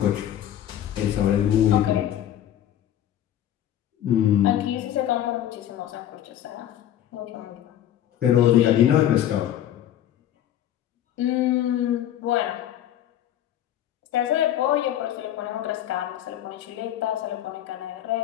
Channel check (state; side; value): quieter; right; 11.4 dB